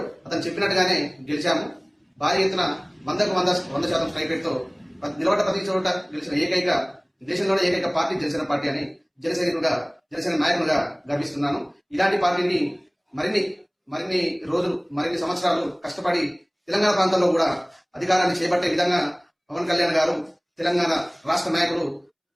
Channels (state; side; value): identical; both; correlation 1.00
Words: అతను చెప్పినట్టుగానే గెలిచాము. భారీ ఎత్తున 100% స్ట్రైక్ రేట్తో నిలబడ్డ ప్రతి చోట గెలిచిన ఏకైక దేశంలోనే ఏకైక పార్టీ జనసేన పార్టీ అని జనసేన నాయకులుగా గర్విస్తున్నాను. ఇలాంటి పార్టీని మరిన్ని రోజులు మరిన్ని సంవత్సరాలు కష్టపడి తెలంగాణ ప్రాంతంలో కూడా అధికారాన్ని చేపట్టే విధంగా పవన్ కళ్యాణ్ గారు తెలంగాణ రాష్ట్ర నాయకులు